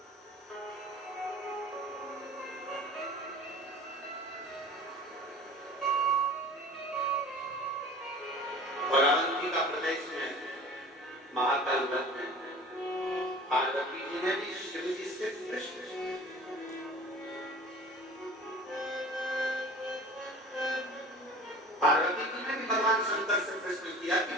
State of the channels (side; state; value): both; normal; correlation 0.42